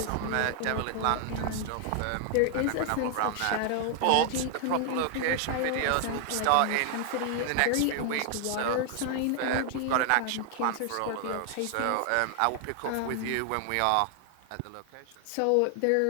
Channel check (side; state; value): both; different; correlation 0.00